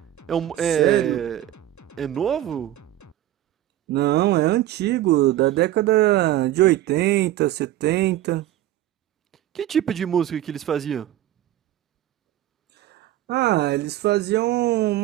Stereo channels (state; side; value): quieter; left; 13.5 dB